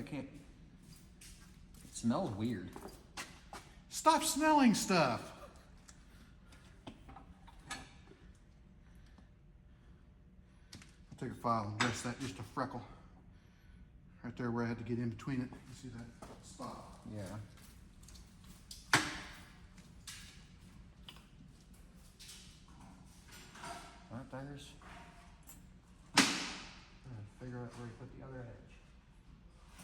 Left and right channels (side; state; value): both; identical; correlation 1.00